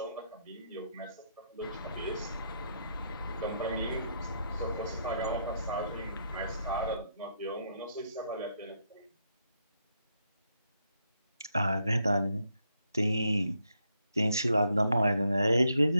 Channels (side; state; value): both; inverted; correlation -0.78